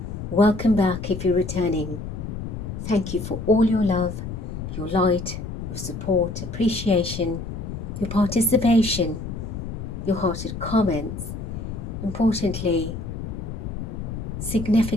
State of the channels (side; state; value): left; noise; rumble, 7 dB below the sound